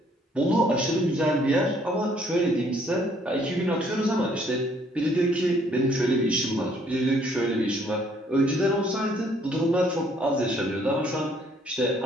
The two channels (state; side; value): normal; both; correlation 0.64